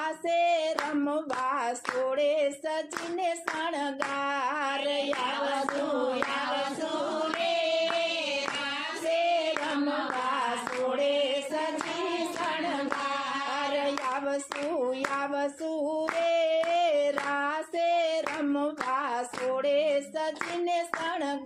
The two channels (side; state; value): both; identical; correlation 1.00